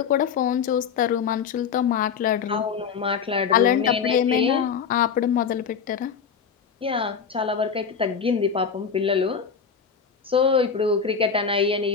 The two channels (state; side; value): quieter; right; 6.5 dB